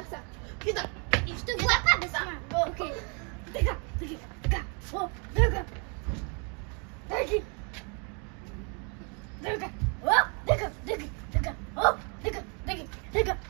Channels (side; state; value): left; quieter; 36.0 dB